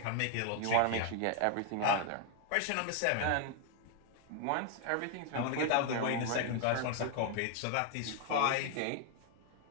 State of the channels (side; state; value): both; different; correlation 0.00